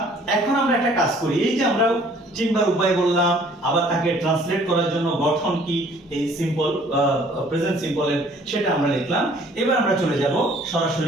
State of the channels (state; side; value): normal; both; correlation 0.56